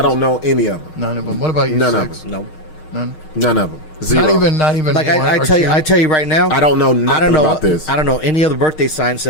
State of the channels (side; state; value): right; late; 12 ms